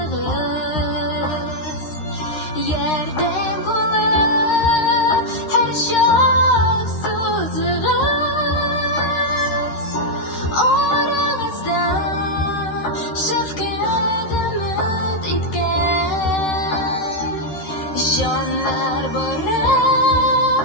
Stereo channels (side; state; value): right; late; 13 ms